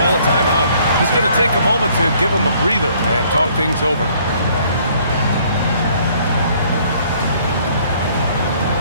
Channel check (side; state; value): both; inverted; correlation -0.61